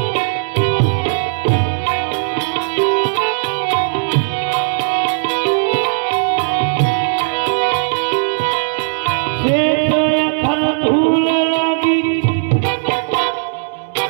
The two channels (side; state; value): left; silent; digital silence